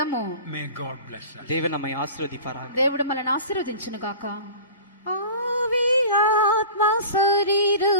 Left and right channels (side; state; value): both; inverted; correlation -0.38